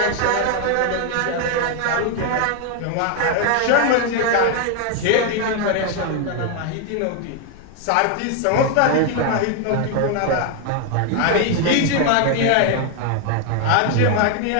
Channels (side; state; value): both; different; correlation 0.01